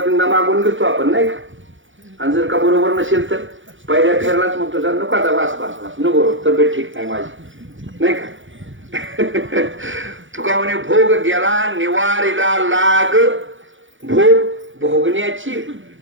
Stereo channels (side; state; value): left; late; 0.56 ms